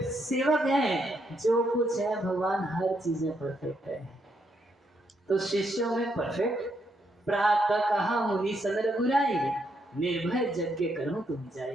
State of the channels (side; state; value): both; normal; correlation 0.77